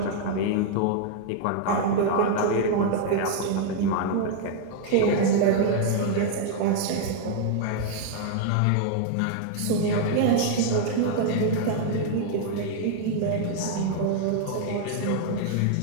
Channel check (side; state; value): both; different; correlation 0.00